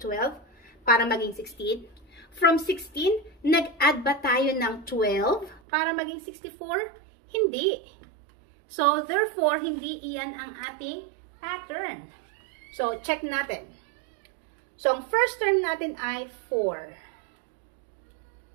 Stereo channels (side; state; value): left; drops out; at 5.6 s